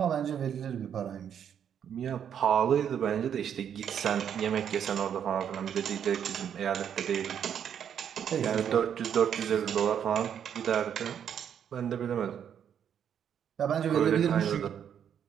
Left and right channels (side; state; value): left; quieter; 8.7 dB